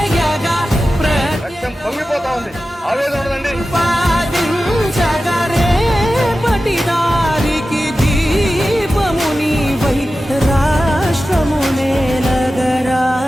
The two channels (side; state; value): both; normal; correlation 0.94